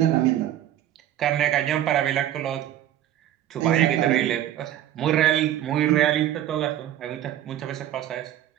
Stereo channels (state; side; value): quieter; left; 12.0 dB